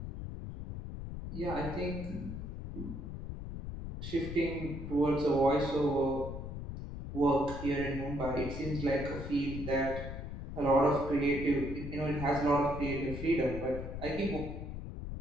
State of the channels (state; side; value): noise; left; rumble, 7 dB below the sound